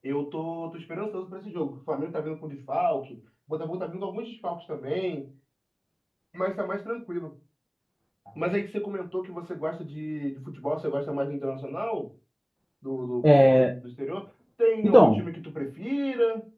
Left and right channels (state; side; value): identical; both; correlation 1.00